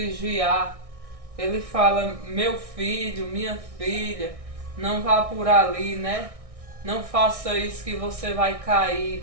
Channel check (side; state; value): left; late; 1.6 ms